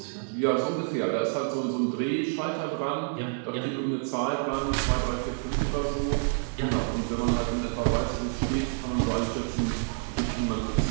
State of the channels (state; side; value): silent; left; 59 dB below the other